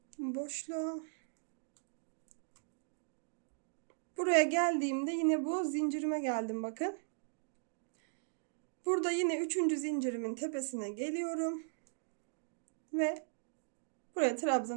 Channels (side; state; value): left; silent; digital silence